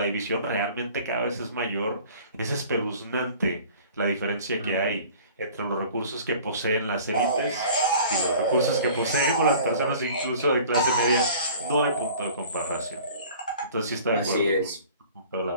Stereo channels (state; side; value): inverted; both; correlation -0.47